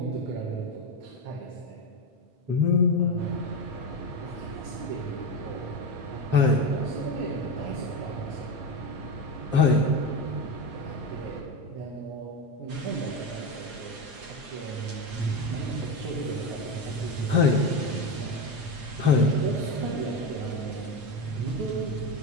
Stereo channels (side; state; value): left; late; 8.5 ms